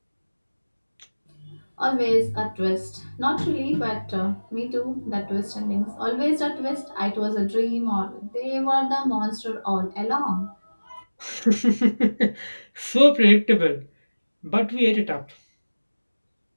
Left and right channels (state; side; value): inverted; both; correlation -1.00